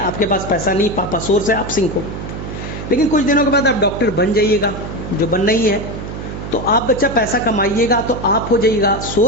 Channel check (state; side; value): noise; right; hum, 8 dB below the sound